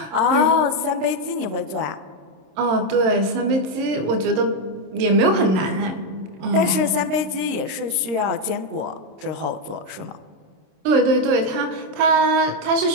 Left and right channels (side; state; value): left; late; 26 ms